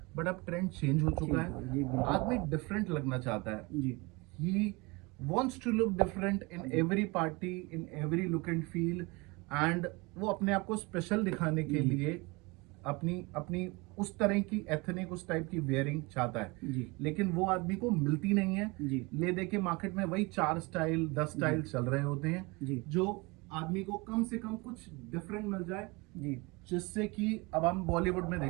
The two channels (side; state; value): left; quieter; 25.9 dB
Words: बट अब ट्रेंड चेंज हो चुका है, आदमी डिफरेंट लगना चाहता है। ही wants to look different in every party, in every look and feel, and वो अपने आप को स्पेशल दिखाने के लिए अपनी उस तरह की एथनिक, उस टाइप की वेयरिंग चाहता है। लेकिन वो आदमी को मिलती नहीं है। ले दे के मार्केट में वही 4 स्टाइल 10 स्टाइल चल रहे होते हैं, जो आदमी को कम से कम कुछ डिफरेंट मिल जाए। जिससे कि अब हम बॉलीवुड में